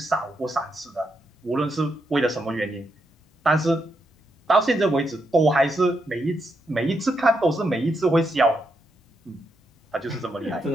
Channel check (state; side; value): normal; both; correlation 0.81